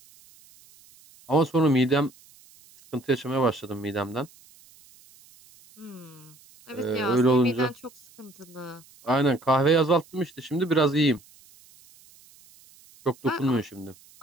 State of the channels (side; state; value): right; noise; hiss, 26 dB below the sound